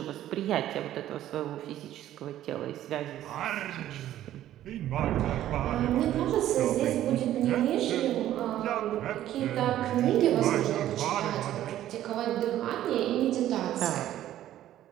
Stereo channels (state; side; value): quieter; left; 12.8 dB